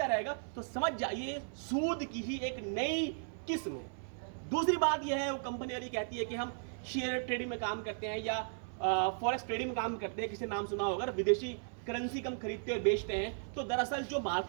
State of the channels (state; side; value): silent; left; 54 dB below the other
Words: रहेगा, तो समझ जाइए सूद की ही एक नई किस्म है। दूसरी बात यह है, वो कंपनी वाली कहती है कि हम शेयर ट्रेडिंग में काम करते हैं या फॉरेक्स ट्रेडिंग में काम करते हैं, किसी नाम सुना होगा, विदेशी करेंसी कम खरीदते और बेचते हैं। तो दरअसल जो